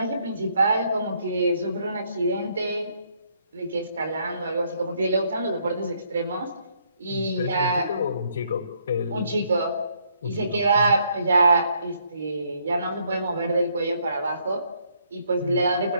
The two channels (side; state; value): both; inverted; correlation -0.70